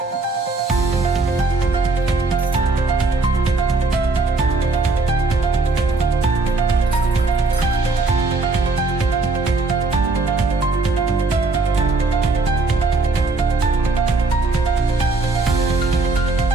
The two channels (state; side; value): quieter; left; 3.6 dB